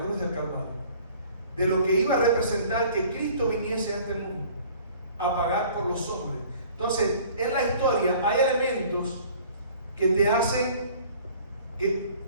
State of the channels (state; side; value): inverted; both; correlation -0.51